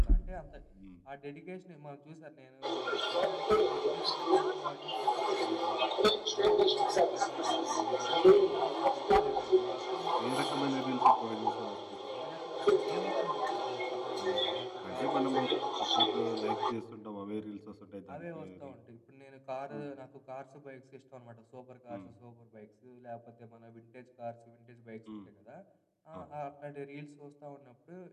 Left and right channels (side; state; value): both; identical; correlation 1.00